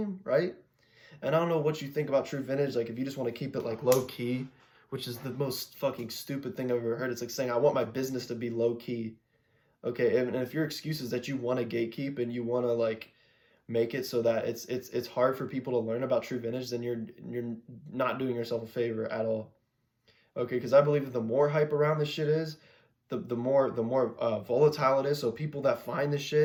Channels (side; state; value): both; identical; correlation 1.00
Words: right? And I don't know what you think about true vintage, like if you just want to keep it like low key, which is the most fucking stupid thing I've ever heard. It's like saying I want my business to be low key. Okay, and if your excuse is that you want to gatekeep and you want to like make it so that it's hard for people to learn about true vintage, then you're not doing yourself a favor at all. Okay, because I believe that the more hype around this shit is, the more volatile it is. So people that find this